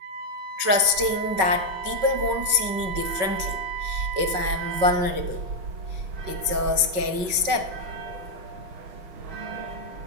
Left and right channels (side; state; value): left; late; 5.4 ms